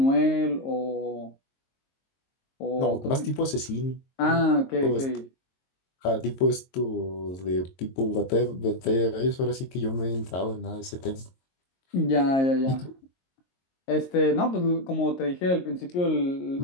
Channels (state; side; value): late; right; 22 ms